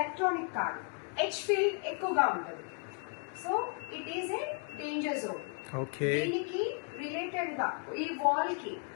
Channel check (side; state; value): right; quieter; 38.9 dB